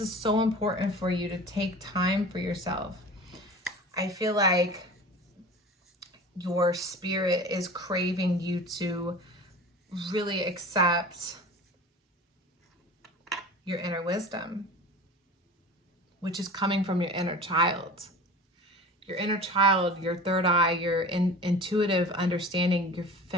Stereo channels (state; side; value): normal; both; correlation 0.37